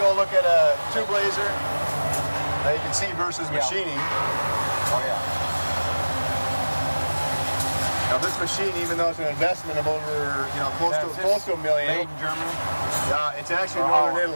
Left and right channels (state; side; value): inverted; both; correlation -1.00